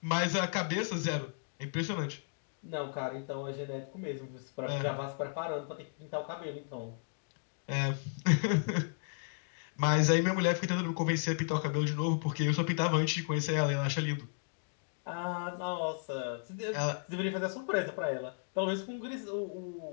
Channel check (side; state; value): right; silent; digital silence